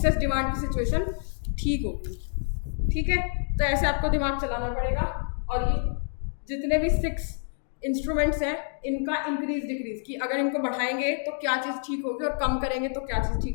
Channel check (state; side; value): silent; right; 60 dB below the other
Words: डिमांड की सिचुएशन ठीक होगी। ठीक है, तो ऐसे आपको दिमाग चलाना पड़ेगा। और ये जितने भी 6 इंस्ट्रूमेंट्स हैं इनका इंक्रीज डिक्रीज, कि अगर इनको बढ़ाएंगे तो क्या चीज़ ठीक होगी और कम करेंगे तो क्या चीज़